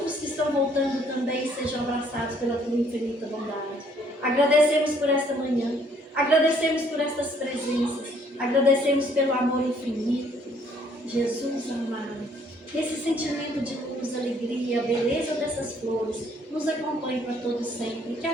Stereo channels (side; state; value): both; normal; correlation 0.63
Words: que estão voltando também sejam abraçados pela Tua infinita bondade. Agradecemos por esta manhã, agradecemos por estas presenças, agradecemos pelo amor infinito. Jesus amado, esse sentimento de luz, alegria, a beleza dessas flores nos acompanhe para todo sempre, que